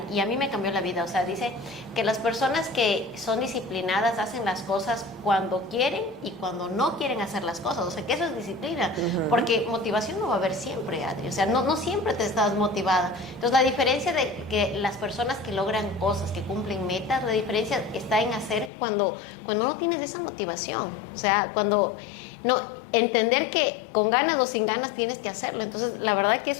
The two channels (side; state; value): right; drops out; at 18.7 s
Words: y a mí me cambió la vida. O sea, dice que las personas que son disciplinadas hacen las cosas cuando quieren y cuando no quieren hacer las cosas. O sea, que eso es disciplina. Porque motivación no va a haber siempre, Adri. O sea, no siempre te estás motivada. Entonces, la diferencia de que las personas que logran cosas, que cumplen metas, la diferencia está en hacer cuando no tienes esa motivación. O sea, cuando... No, entender que con ganas o sin ganas tienes que hacerlo. Entonces, la verdad que